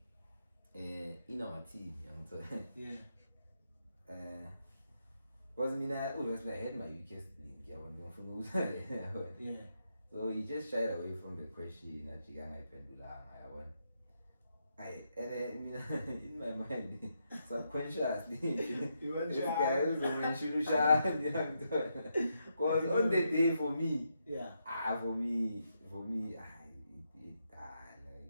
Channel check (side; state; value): both; inverted; correlation -0.81